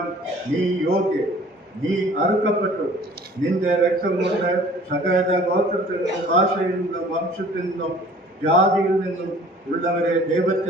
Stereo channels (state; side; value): normal; both; correlation 0.50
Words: നീ യോഗ്യൻ. നീ അറുക്കപ്പെട്ടു. നിന്റെ രക്തം കൊണ്ട് സകല ഗോത്രത്തിൽ നിന്നും ഭാഷയിൽ നിന്നും വംശത്തിൽ നിന്നും ജാതിയിൽ നിന്നും ഉള്ളവരെ